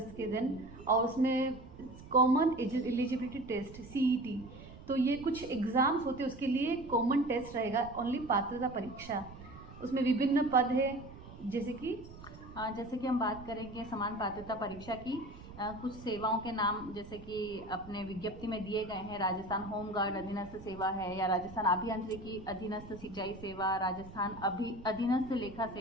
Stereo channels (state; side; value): noise; right; rumble, 16 dB below the sound